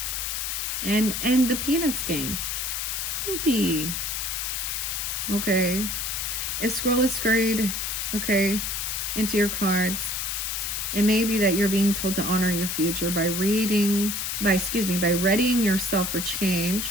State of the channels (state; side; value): noise; left; hiss, 2 dB below the sound